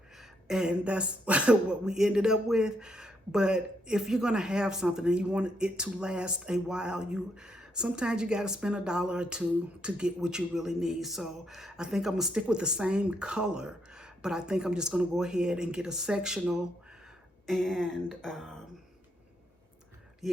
and that's what we ended up with. But if you're going to have something and you want it to last a while, sometimes you got to spend $1 or $2 to get what you really need. So I think I'm gonna stick with the same color, but I think I'm just gonna go ahead and get a sectional. And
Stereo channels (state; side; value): normal; both; correlation 0.76